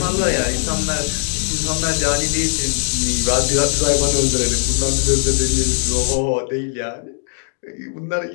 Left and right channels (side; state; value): right; silent; 60 dB below the other